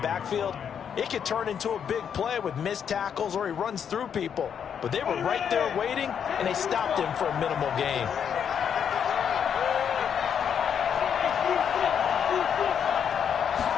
backfield, it could turn into a big play with missed tackles or he runs through people. But they were right there waiting, and they stopped him for a minimal gain.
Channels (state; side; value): quieter; right; 7.9 dB